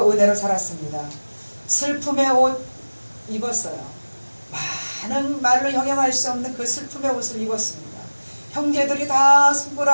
은혜로 살았습니다. 슬픔의 옷 입었어요. 많은 말로 형용할 수 없는 그 슬픔의 옷을 입었습니다. 형제들이 다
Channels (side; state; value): both; inverted; correlation -1.00